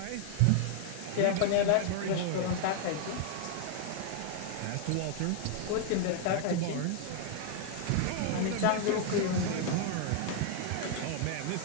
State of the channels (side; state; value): both; different; correlation 0.00